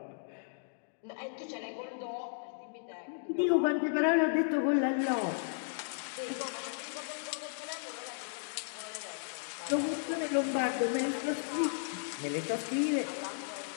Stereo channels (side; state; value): right; silent; digital silence